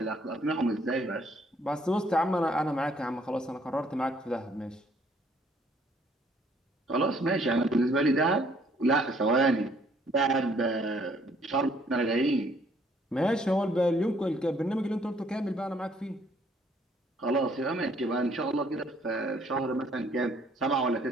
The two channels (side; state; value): both; normal; correlation 0.64